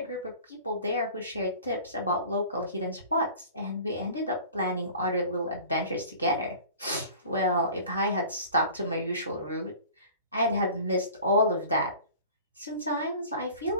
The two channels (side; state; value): both; inverted; correlation -0.43